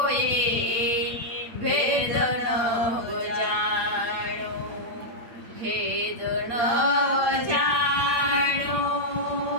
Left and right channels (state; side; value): late; left; 8.5 ms